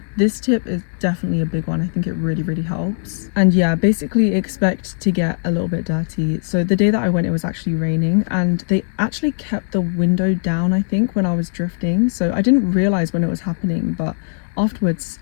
this tip is definitely a big one. I think it really helps. And yeah, basically expect to get a little bit dirty. So the day that I went, it was actually raining, and they actually kept the window down, I think, when I was drifting. So I didn't realize when it was happening, but afterwards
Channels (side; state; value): right; silent; digital silence